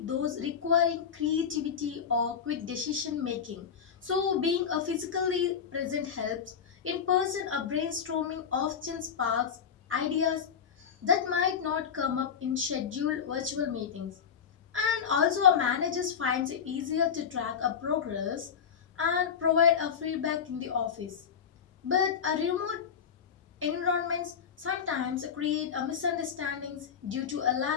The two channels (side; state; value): right; quieter; 7.3 dB